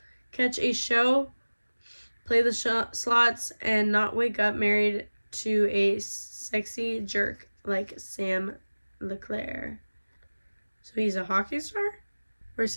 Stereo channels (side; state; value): both; inverted; correlation -1.00